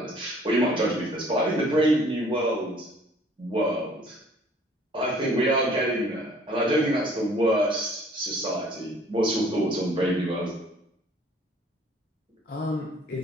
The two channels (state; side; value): normal; both; correlation 0.56